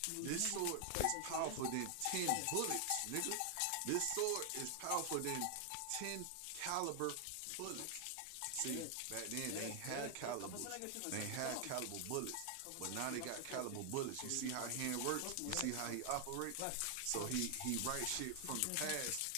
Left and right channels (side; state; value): both; different; correlation 0.00